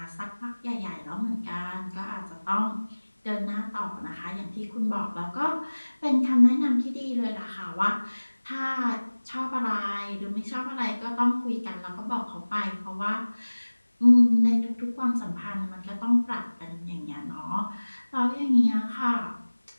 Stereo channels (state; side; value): inverted; both; correlation -1.00